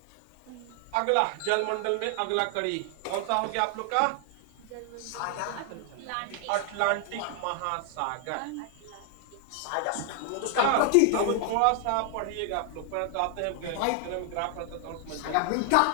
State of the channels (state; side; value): different; both; correlation 0.00